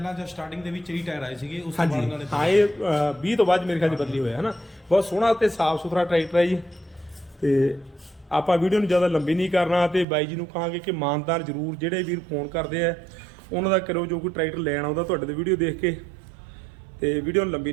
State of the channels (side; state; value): left; drops out; at 10.1 s